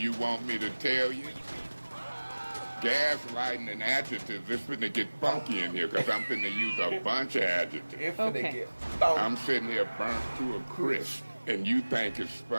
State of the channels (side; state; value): both; inverted; correlation -1.00